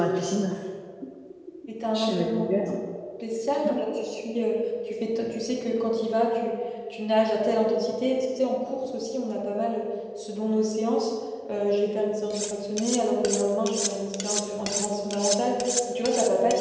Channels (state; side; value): identical; both; correlation 1.00